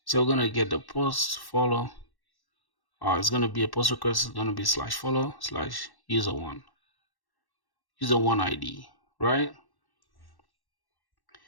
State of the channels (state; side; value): late; right; 1.1 ms